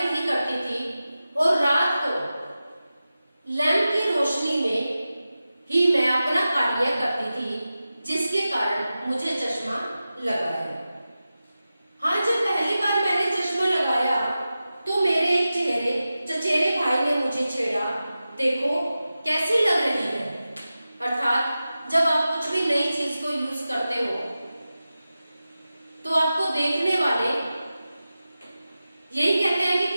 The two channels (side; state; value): both; inverted; correlation -0.94